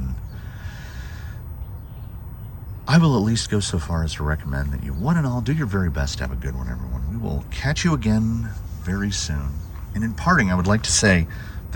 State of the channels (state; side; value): identical; both; correlation 1.00